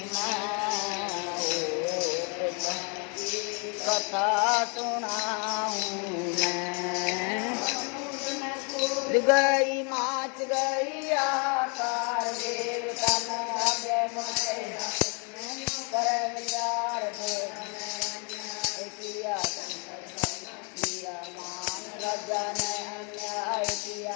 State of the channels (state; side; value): quieter; right; 35.5 dB